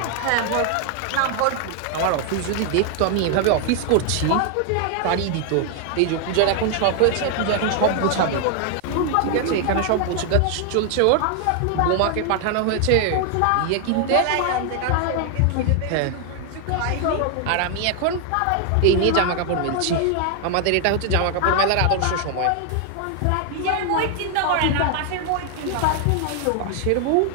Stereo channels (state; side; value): different; both; correlation 0.00